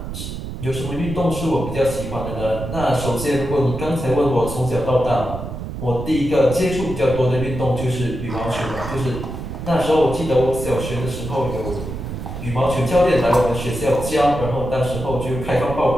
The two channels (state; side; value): noise; right; rumble, 7 dB below the sound